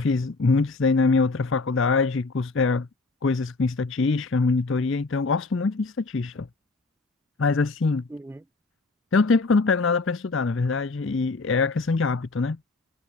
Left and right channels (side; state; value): right; quieter; 3.7 dB